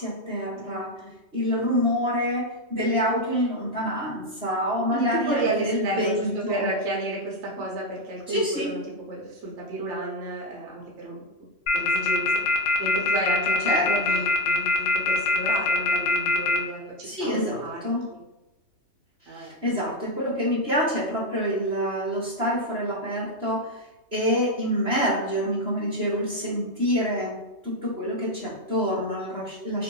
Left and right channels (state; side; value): late; left; 3.0 ms